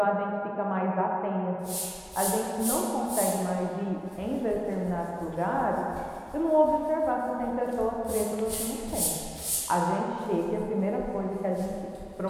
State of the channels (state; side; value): identical; both; correlation 1.00